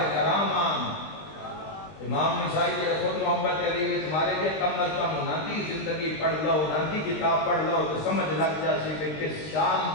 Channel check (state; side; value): late; right; 20 ms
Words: کرام آن۔ امام نسائی کے خود محبت علی وچ مارے گئے کم از کم ناندی زندگی پڑھ لو، ناندی کتاب پڑھ لو تو سمجھ لگ جاسی کہ کس